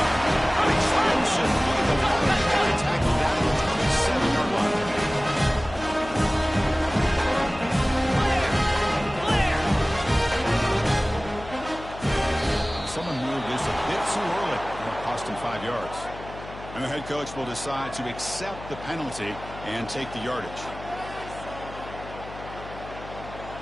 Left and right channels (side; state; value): left; noise; hum, 14 dB below the sound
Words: An explosive play. The running back tackled down the 27-yard line. Someone moved this a bit too early. It'll cost him 5 yards. And the head coach will decide to accept the penalty and take the yardage.